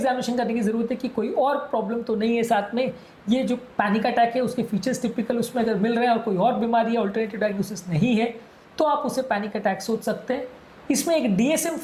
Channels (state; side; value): identical; both; correlation 1.00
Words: करने की ज़रूरत है कि कोई और प्रॉब्लम तो नहीं है साथ में। ये जो पैनिक अटैक है उसके फीचर्स टिपिकल उसमें अगर मिल रहे हैं और कोई और बीमारी या अल्टरनेटिव डायग्नोसिस नहीं है तो आप उसे पैनिक अटैक सोच सकते हैं। इसमें एक